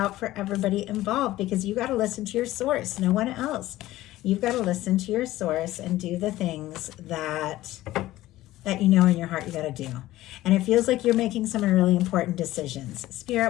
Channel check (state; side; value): quieter; right; 15.9 dB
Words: for everybody involved because you got to listen to your source, no one else. You've got to listen to your source and do the things that you know in your heart you got to do. And it feels like you're making some really important decisions.